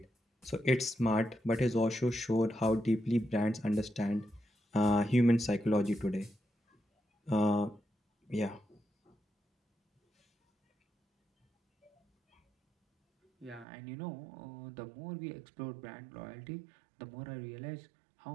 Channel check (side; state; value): left; drops out; at 13.7 s